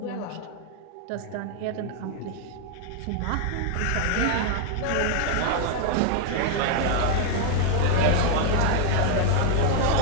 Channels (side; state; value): both; different; correlation 0.00